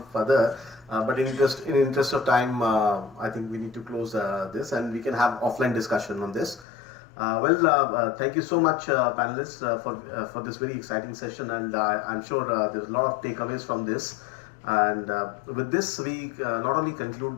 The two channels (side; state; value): right; drops out; at 6.7 s